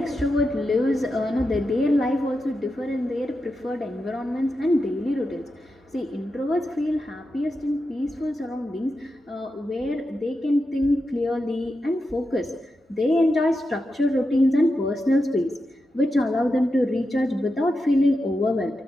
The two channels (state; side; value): normal; both; correlation 0.88